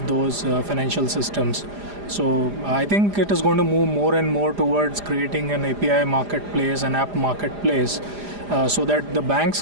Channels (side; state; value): left; late; 4.9 ms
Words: those financial systems. So I think it is going to move more and more towards creating an API marketplace, an app marketplace, so that the banks